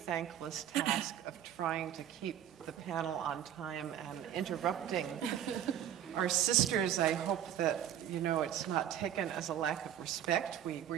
task of trying to keep the panel on time and interrupting our sisters. I hope that, you know, it's not taken as a lack of respect.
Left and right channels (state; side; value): quieter; left; 10.6 dB